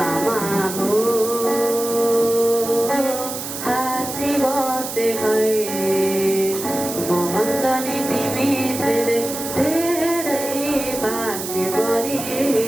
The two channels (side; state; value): right; noise; hiss, 7 dB below the sound